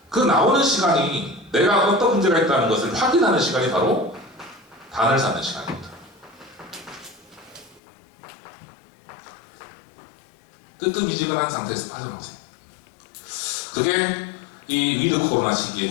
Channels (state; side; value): drops out; right; at 7.8 s